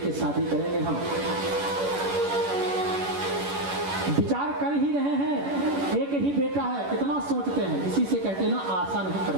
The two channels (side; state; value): left; late; 11 ms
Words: शादी करेंगे। हम विचार कर ही रहे हैं, एक ही बेटा है, कितना सोचते हैं। इसी से कहते हैं ना, आशा नहीं